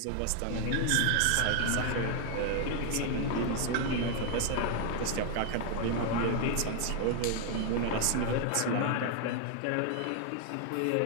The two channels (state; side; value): different; both; correlation 0.00